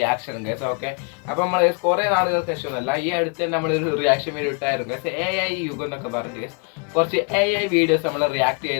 guys. Okay, അപ്പോൾ നമ്മൾ കുറേ നാളുകൾക്ക് ശേഷമൊന്നുമല്ല, ഈ അടുത്ത് തന്നെ നമ്മളൊരു റിയാക്ഷൻ വീഡിയോ ഇട്ടായിരുന്നു ഗൈസ്. AI യുഗം എന്നൊക്കെ പറഞ്ഞു ഗൈസ്. കുറച്ച് AI വീഡിയോസ് നമ്മൾ റിയാക്ട്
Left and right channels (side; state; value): right; quieter; 34.1 dB